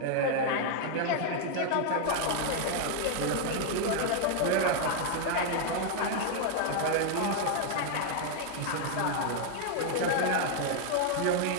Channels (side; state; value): both; different; correlation 0.00